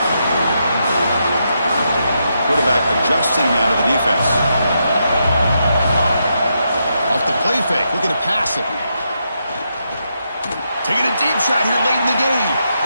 Quarterback adjusting now to the defense. Off the play fake, looking to pass it. Taking a deep shot here late in the game.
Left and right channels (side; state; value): both; inverted; correlation -0.82